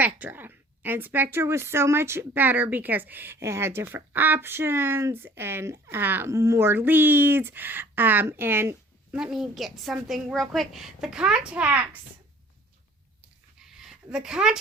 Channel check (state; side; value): normal; both; correlation 0.52